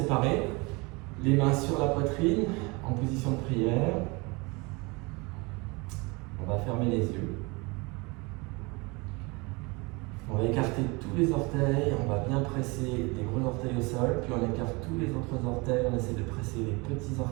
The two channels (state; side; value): quieter; left; 26.9 dB